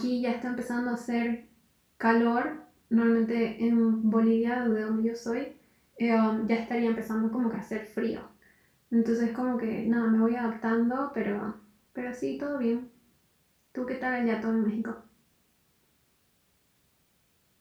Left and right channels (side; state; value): both; identical; correlation 1.00